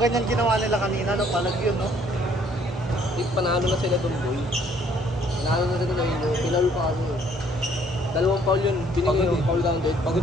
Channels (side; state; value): both; normal; correlation 0.62